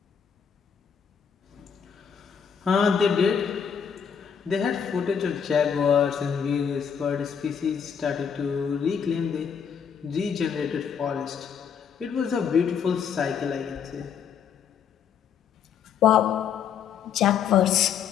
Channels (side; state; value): right; quieter; 7.4 dB